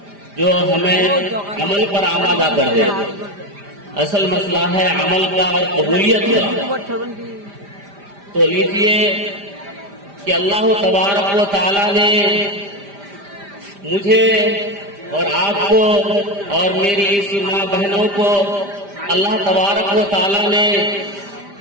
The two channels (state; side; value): late; left; 5.0 ms